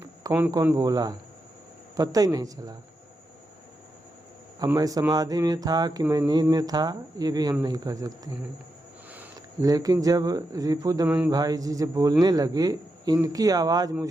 कौन कौन बोला, पता ही नहीं चला। अब मैं समाधि में था कि मैं नींद में था, ये भी हम नहीं कर सकते हैं। लेकिन जब रिपु दमन भाई जी जब बोलने लगे, इनकी आवाज़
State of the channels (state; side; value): normal; both; correlation 0.86